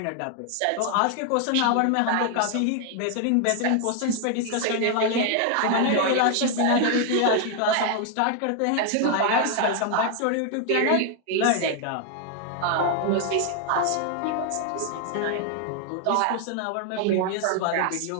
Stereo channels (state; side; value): different; both; correlation 0.00